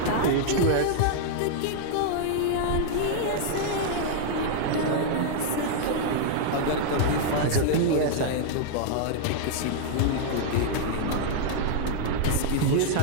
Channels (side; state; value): both; different; correlation -0.01